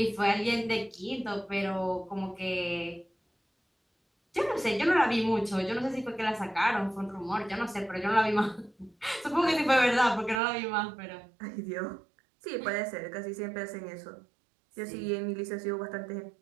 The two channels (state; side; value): drops out; left; at 10.4 s